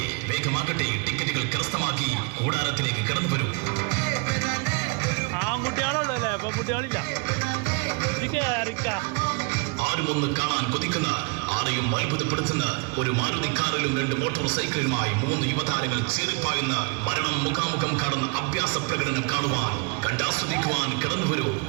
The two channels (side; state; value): left; quieter; 31.7 dB